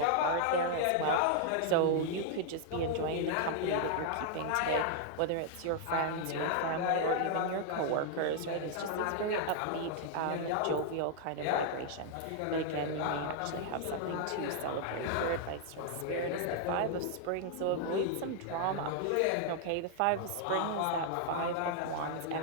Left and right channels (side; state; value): both; different; correlation 0.00